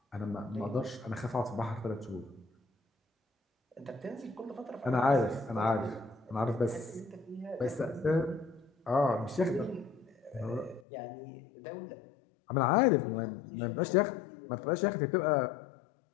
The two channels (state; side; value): drops out; right; at 10.8 s